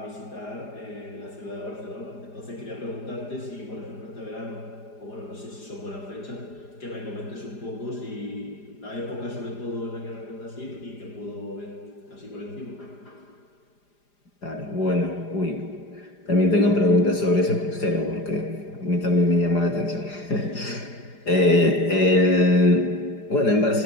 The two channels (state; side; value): late; right; 4.9 ms